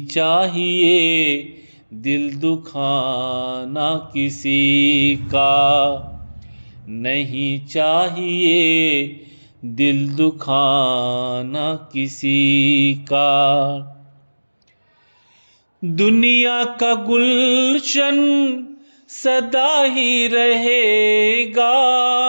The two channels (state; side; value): inverted; both; correlation -1.00